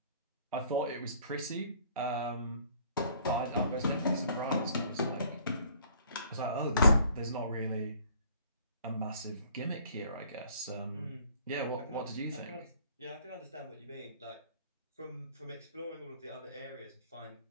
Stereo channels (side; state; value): both; inverted; correlation -0.57